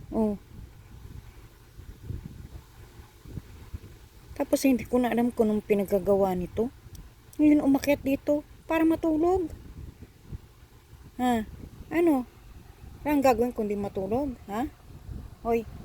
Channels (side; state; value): both; identical; correlation 1.00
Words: Oh. Tapos hindi ko na alam kung anong pinagagawa nito. Ngayon umakyat dito para matulog. Ha? Ano? Ang gagawin kundi matulog? Ha? Oy.